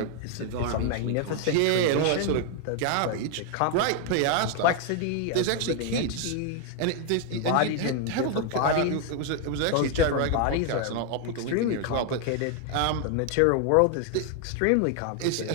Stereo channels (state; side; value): different; both; correlation 0.00